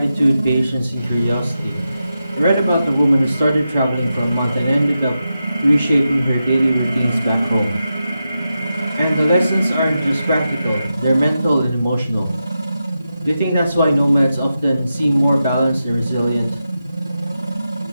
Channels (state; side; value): inverted; both; correlation -0.89